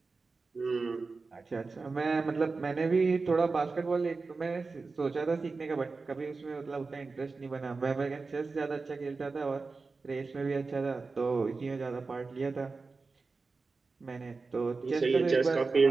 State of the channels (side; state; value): left; quieter; 4.1 dB